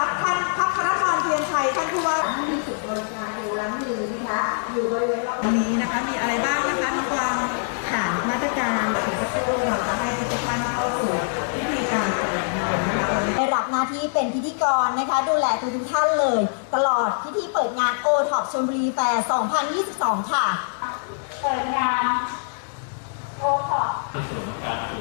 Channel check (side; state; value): right; silent; digital silence